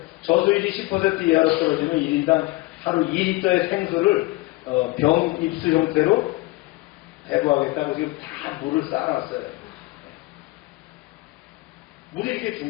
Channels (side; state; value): right; quieter; 21.3 dB